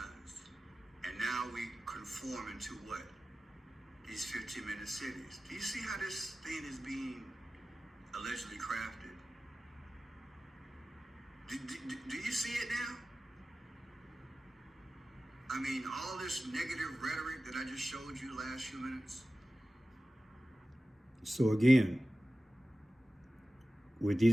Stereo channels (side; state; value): both; normal; correlation 0.96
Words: and now we conform into what? These 15-minute cities. Do you see how this thing is being allegedly crafted? Do you see it now? I mean, all this negative rhetoric that I just showed you last few minutes. So again, with